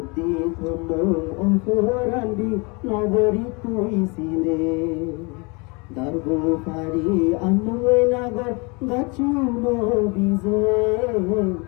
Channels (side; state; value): right; quieter; 29.7 dB